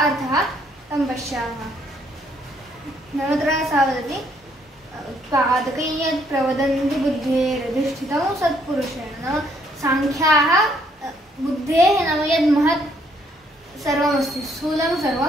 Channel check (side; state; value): both; normal; correlation 0.68